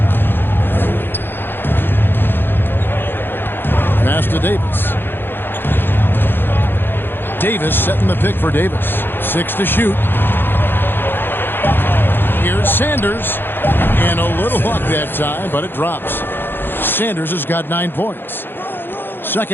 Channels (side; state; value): right; late; 0.10 ms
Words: Pass to Davis. Davis setting the pick for Davis. 6 to shoot. Here's Sanders. And a little luck that time, but it drops. Sanders has got 9 points.